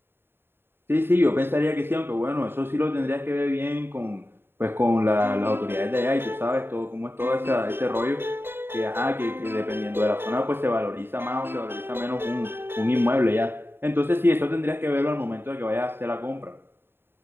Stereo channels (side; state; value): left; late; 0.11 ms